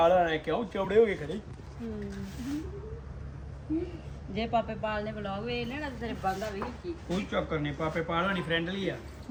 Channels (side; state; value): both; identical; correlation 1.00